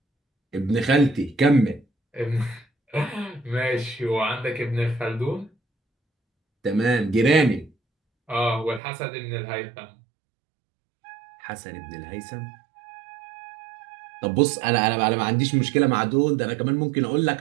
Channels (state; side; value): drops out; left; at 8.8 s